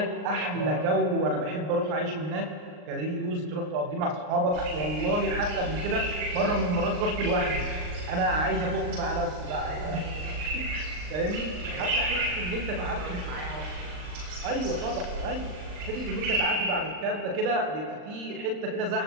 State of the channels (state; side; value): late; left; 39 ms